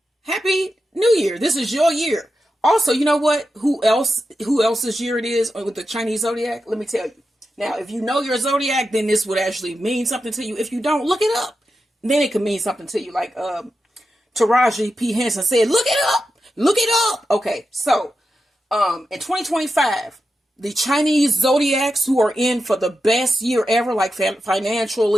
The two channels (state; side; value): normal; both; correlation 0.89